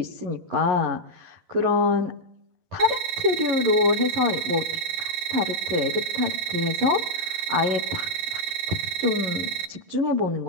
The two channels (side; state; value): left; late; 12 ms